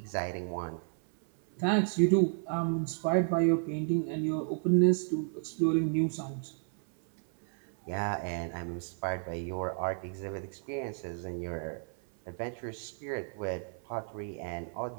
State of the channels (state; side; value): silent; left; 56 dB below the other